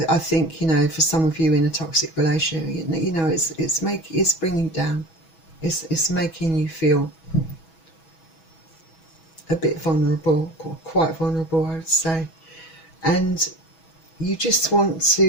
think, you know, for some of you in a toxic relationship, you know, it's bringing you down. It's making you feel a bit vulnerable, or quite vulnerable, I would say. And you just want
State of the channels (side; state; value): right; late; 6.2 ms